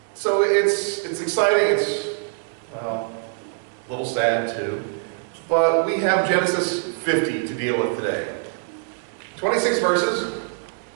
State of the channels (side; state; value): left; silent; 63 dB below the other